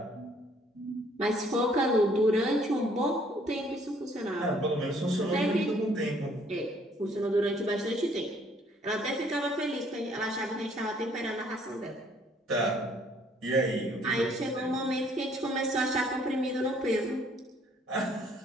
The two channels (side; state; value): both; normal; correlation 0.62